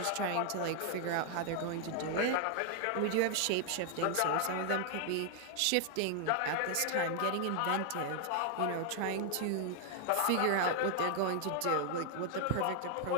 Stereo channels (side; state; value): both; different; correlation 0.00